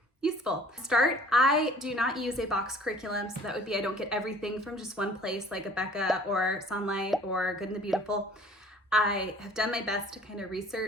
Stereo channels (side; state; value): both; normal; correlation 0.51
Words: useful. To start, I do not use a box curriculum, so that would be I don't get everything from just one place like Abeka or Sunlight or Good and the Beautiful. I have done my best to kind of